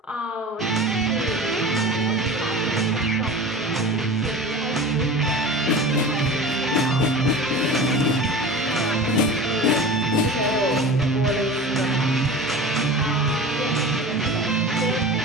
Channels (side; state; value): both; normal; correlation 0.34